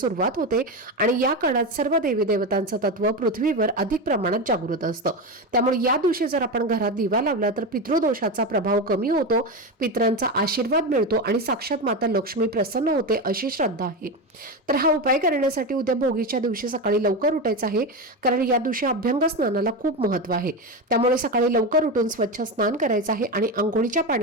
होते आणि या काळात सर्व देवी देवतांचं तत्व पृथ्वीवर अधिक प्रमाणात जागृत असतं. त्यामुळे या दिवशी जर आपण घरात दिवा लावला तर पितृदोषाचा प्रभाव कमी होतो, पितरांचा आशीर्वाद मिळतो आणि साक्षात माता लक्ष्मी प्रसन्न होते अशी श्रद्धा आहे. तर हा उपाय करण्यासाठी उद्या भोगीच्या दिवशी सकाळी सकाळी लवकर उठायचं आहे, कारण या दिवशी अभ्यंग स्नानाला खूप महत्त्व आहे. त्यामुळे सकाळी लवकर उठून स्वच्छ स्नान करायचं आहे आणि अंघोळीच्या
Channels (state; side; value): normal; both; correlation 0.17